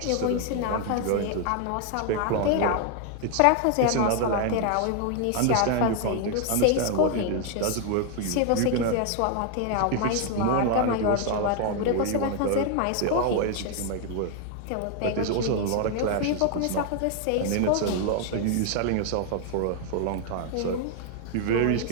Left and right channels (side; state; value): both; different; correlation 0.00